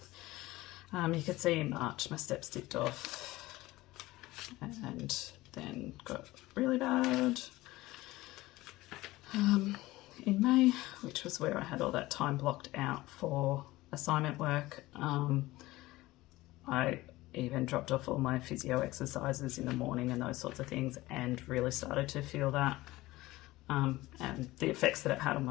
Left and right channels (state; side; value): quieter; right; 18.5 dB